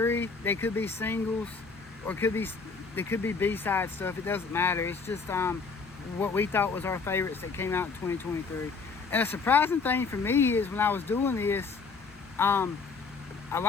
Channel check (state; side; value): quieter; right; 4.7 dB